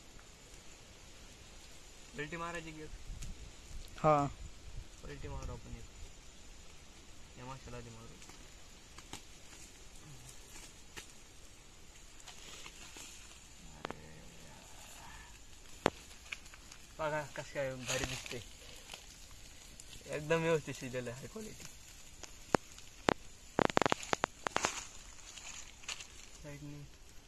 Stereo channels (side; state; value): both; identical; correlation 1.00